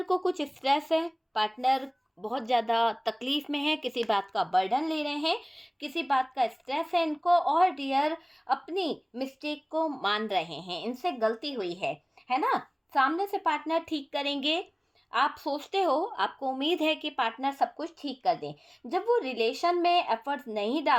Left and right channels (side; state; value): both; identical; correlation 1.00